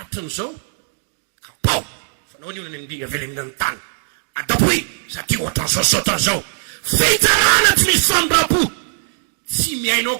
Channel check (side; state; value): left; silent; digital silence